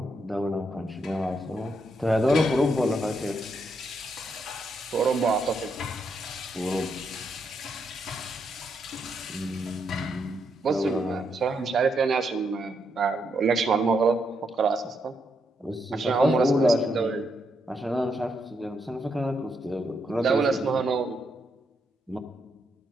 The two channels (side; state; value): both; normal; correlation 0.79